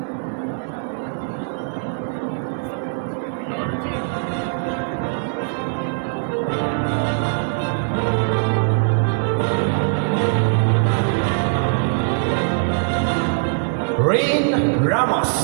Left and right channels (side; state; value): left; silent; 64 dB below the other